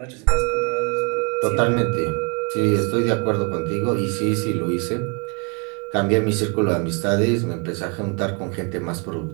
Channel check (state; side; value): quieter; left; 34.4 dB